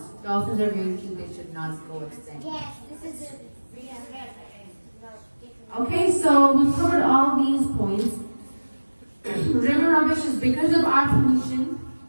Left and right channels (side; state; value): both; inverted; correlation -1.00